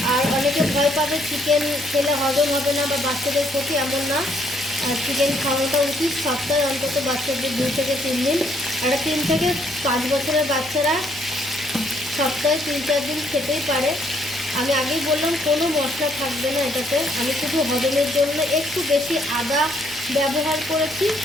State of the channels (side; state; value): left; noise; rumble, 26 dB below the sound